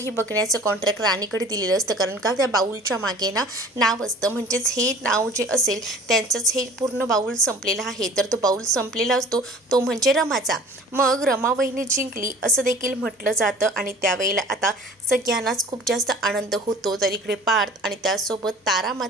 बघण्याचं कॉन्ट्रॅक्ट राणीकडे दिलेलं असतं। कारण का त्या बाउलच्या मागे ना नाव असतं, म्हणजेच हे नाव जे असेल त्यांचंच हे पूर्ण बाउल संपलेला आहे। तर तो बाउल संपलेला असतो तो म्हणजे रमाचा। मग रमा वहिनी जिंकली असं देखील म्हटलं जातं आणि त्यावेळेला आता सगळ्यांनाच खूप जास्त आनंद होतो। तर इकडे पार्थ आणि त्यासोबत तारा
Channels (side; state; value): both; normal; correlation 0.46